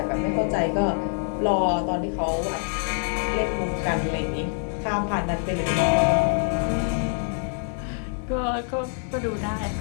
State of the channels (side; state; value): right; silent; digital silence